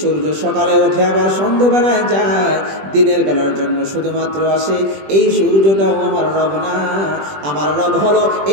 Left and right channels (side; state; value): left; late; 20 ms